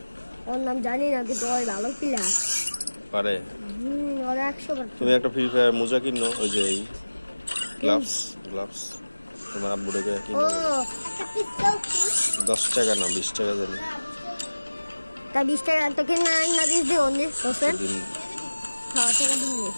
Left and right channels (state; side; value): inverted; both; correlation -1.00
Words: ওর নাম জানি না কিন্তু ওই ভালো প্লেয়ার পারে ওর 100 তুমি একটা ফ্রি ফায়ার মোজা কিনো ওই যে এই গ্লাভস তোমার আব্বুটাকে কিনো ও একটা পিস্তল 10 টাকা না 20 টাকা জানি তা 20 টাকা তো কিনা না দিস দিও নি হোসেন দিন হ্যাঁ টাকা দিন